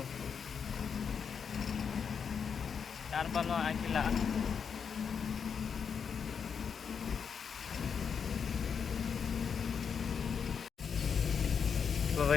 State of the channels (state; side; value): quieter; right; 6.6 dB